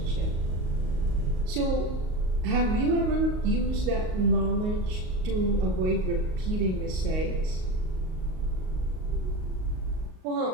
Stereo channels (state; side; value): late; left; 38 ms